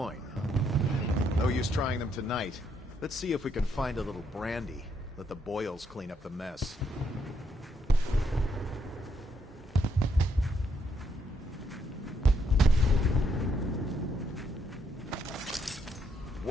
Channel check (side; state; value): both; normal; correlation 0.75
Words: No use trying them tonight. Let's see if we can find a little brandy. Let the boils clean up the mess.